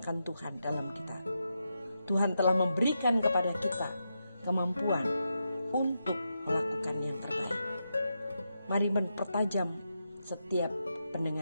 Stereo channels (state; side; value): inverted; both; correlation -0.86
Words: Tuhan dalam kita. Tuhan telah memberikan kepada kita kemampuan untuk melakukan yang terbaik. Mari mempertajam setiap